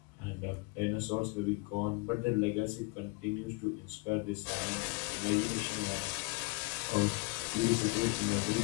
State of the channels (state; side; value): quieter; right; 28.9 dB